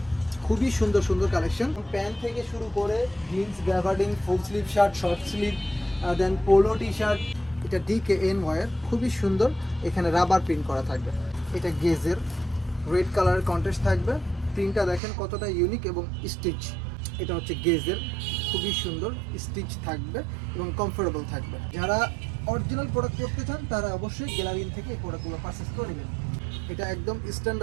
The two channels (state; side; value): drops out; left; at 15.0 s